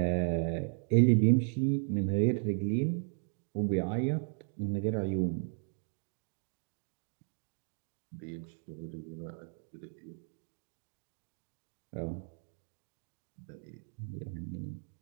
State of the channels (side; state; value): left; silent; 54 dB below the other